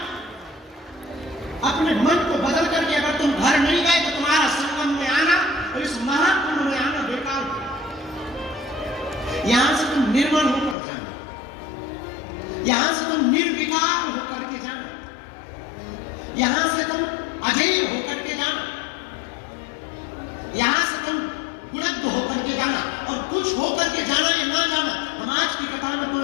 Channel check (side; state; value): right; drops out; at 10.8 s